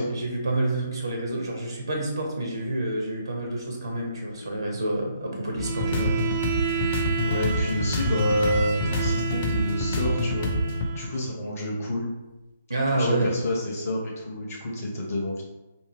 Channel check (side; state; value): both; inverted; correlation -0.69